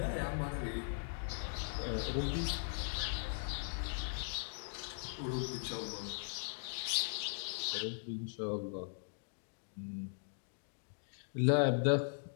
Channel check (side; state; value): right; silent; digital silence